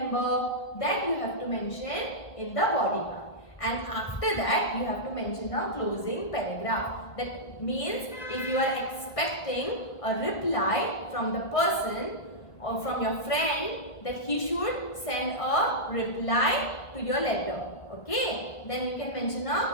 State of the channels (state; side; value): late; right; 1.7 ms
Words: that you have to mention in the body part. And after that, you have to mention a closing paragraph. That means if you are expecting a reply from the person or from your friend, that he should send a reply to your letter. Okay, then you can mention